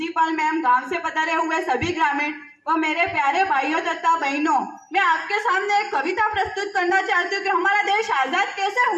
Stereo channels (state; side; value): identical; both; correlation 1.00